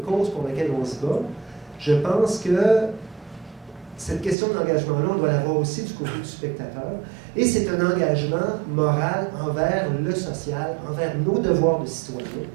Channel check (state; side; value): drops out; left; at 4.4 s